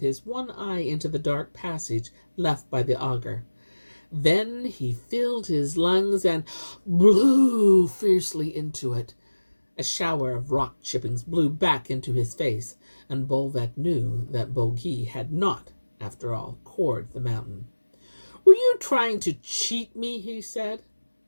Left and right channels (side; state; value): both; inverted; correlation -1.00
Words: one eye into the dark passage left by the auger. Then he filled his lungs and blew fiercely into it. A shower of rock chippings blew back into his face, and Bolvek knew that Bogey had not, after all, cored the mountain. "Were you trying to cheat me?" he said.